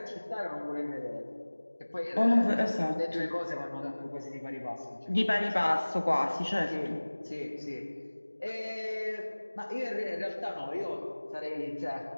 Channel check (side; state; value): both; inverted; correlation -1.00